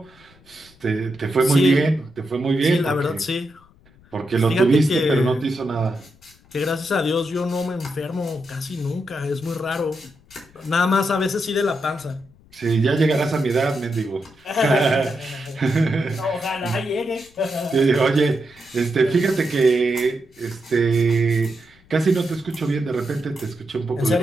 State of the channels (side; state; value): left; noise; rumble, 28 dB below the sound